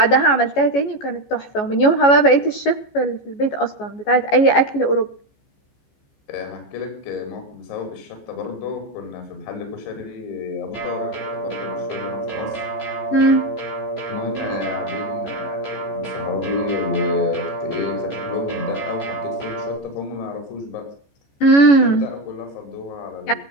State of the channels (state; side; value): late; right; 14 ms